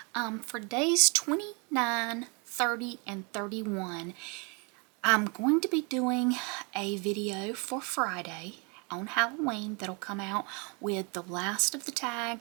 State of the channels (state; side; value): quieter; left; 33.0 dB